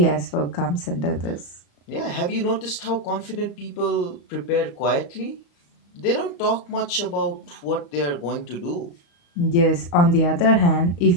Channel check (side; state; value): right; late; 34 ms